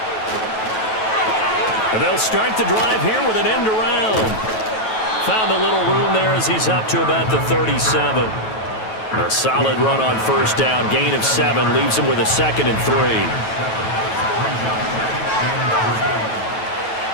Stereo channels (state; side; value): late; right; 9.2 ms